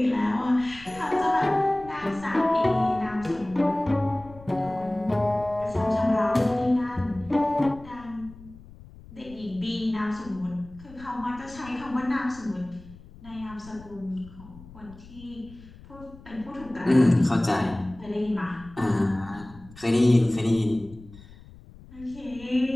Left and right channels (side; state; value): left; noise; rumble, 20 dB below the sound